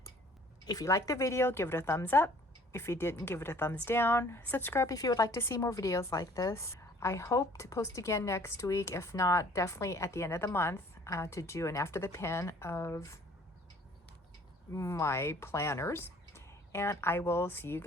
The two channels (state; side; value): normal; both; correlation 0.55